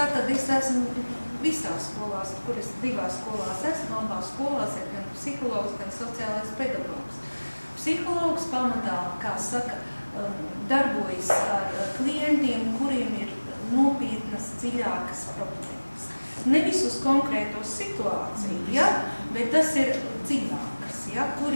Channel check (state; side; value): inverted; both; correlation -1.00